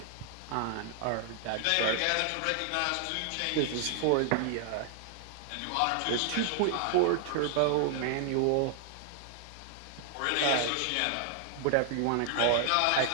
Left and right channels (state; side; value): different; both; correlation 0.00